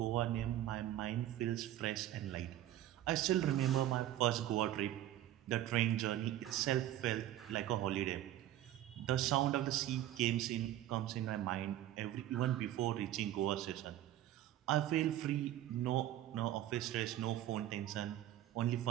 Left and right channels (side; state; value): left; quieter; 13.2 dB